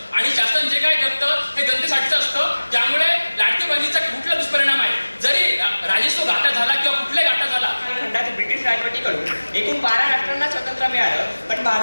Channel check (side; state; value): both; inverted; correlation -1.00